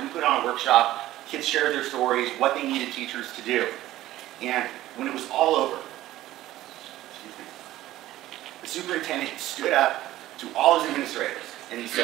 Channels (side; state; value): left; quieter; 15.0 dB